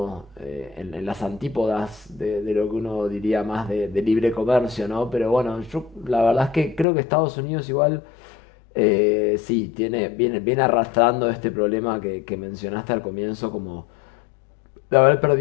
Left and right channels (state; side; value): drops out; right; at 6.9 s